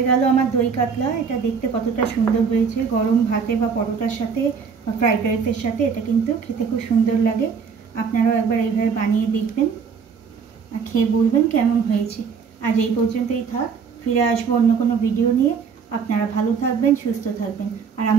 গেল আমার দই কাতলা। এটা দেখতে কতটা সুন্দর হয়েছে, গরম ভাতে বা পরোটার সাথে বা ফ্রাইড রাইসের সাথে এটা কিন্তু খেতে খুব সুন্দর লাগে। আপনারাও একবার এইভাবে বানিয়ে দেখবেন আর খেয়ে বলবেন কেমন হয়েছে। আজ এই পর্যন্তই থাক, ফিরে আসবো অন্য কোনো ভিডিও নিয়ে। আপনারা ভালো থাকবেন, সুস্থ থাকবেন। আর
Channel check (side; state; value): left; quieter; 6.1 dB